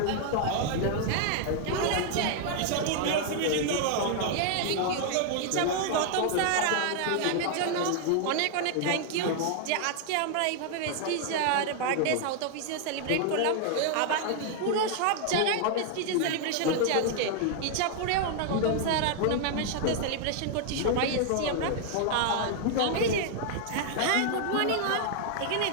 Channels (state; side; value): different; both; correlation 0.00